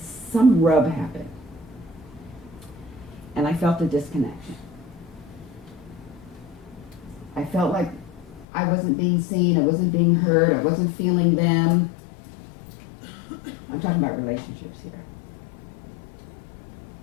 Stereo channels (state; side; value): drops out; right; at 8.5 s